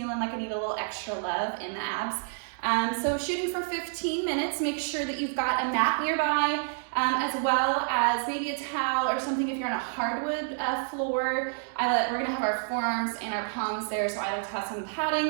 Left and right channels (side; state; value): left; silent; digital silence